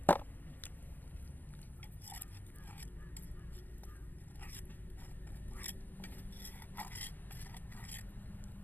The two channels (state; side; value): late; right; 0.087 ms